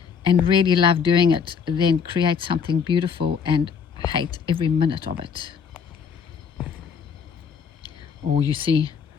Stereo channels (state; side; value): quieter; right; 6.6 dB